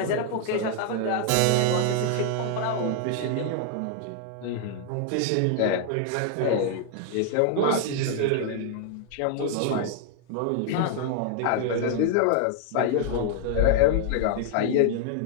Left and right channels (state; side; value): different; both; correlation 0.00